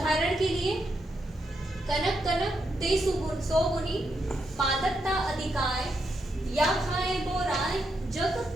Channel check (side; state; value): both; normal; correlation 0.81